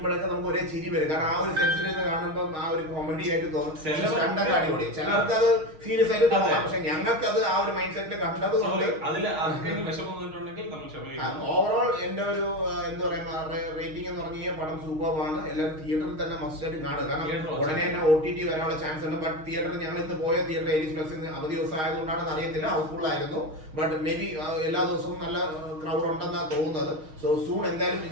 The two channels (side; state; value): left; late; 6.4 ms